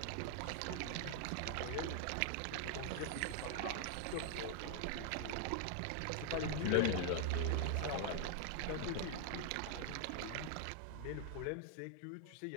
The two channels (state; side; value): different; both; correlation 0.00